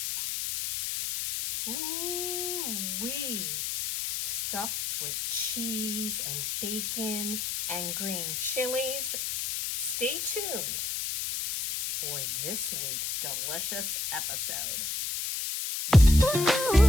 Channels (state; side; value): noise; left; hiss, 2 dB below the sound